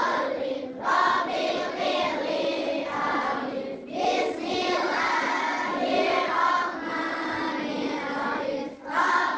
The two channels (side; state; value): both; identical; correlation 1.00